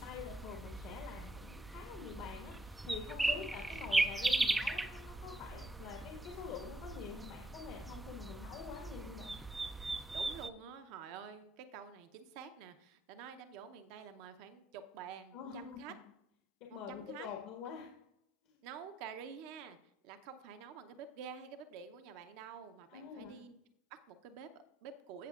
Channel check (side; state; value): both; normal; correlation 0.78